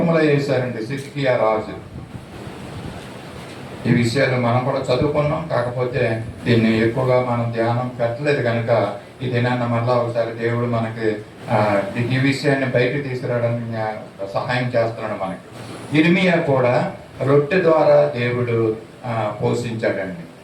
వేశారండి సిద్కియా రాజు. ఈ విషయాలు మనం కూడా చదువుకున్నాం, కాకపోతే దీన్ని ఎక్కువగా మనం ధ్యానం పెట్టలేదు కనుక ఈ దినాన్ని మళ్ళా ఒకసారి దేవుడు మనకి ఈ విషయాన్ని బయటకు తీసుకురావడానికి సహాయం చేస్తున్నాడు మనకి. ఇర్మియా కూడా రొట్టె ద్వారా దేవుడు పోషించాడండి.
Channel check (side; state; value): both; identical; correlation 1.00